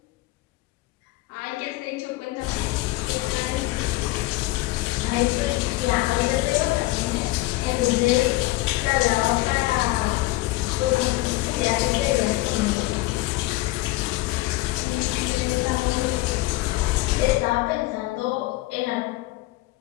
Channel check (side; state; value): right; quieter; 19.0 dB